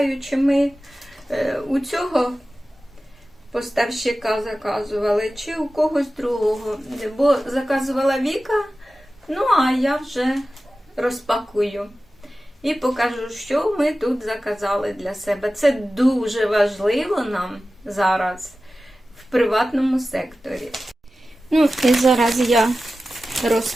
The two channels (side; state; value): both; normal; correlation 0.95